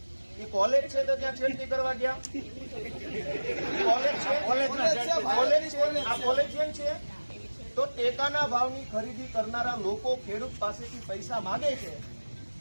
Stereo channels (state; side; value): inverted; both; correlation -1.00